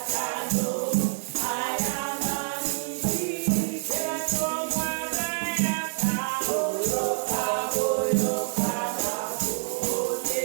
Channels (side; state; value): left; silent; digital silence